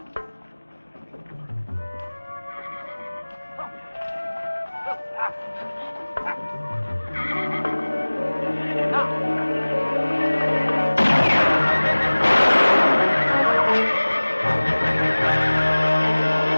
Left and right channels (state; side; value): inverted; both; correlation -1.00